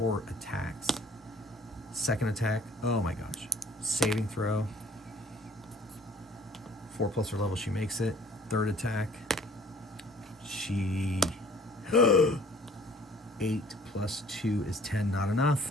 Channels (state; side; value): normal; both; correlation 0.54